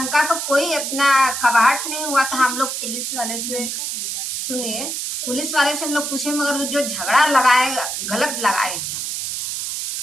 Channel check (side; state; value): right; noise; hiss, 3 dB below the sound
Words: का कोई इतना कबाड़ नहीं हुआ था। हम लोग पुलिस वाले से सुनिए, पुलिस वाले से हम लोग पूछे, मगर वो जो झगड़ा लगाए गलत लगाए हैं।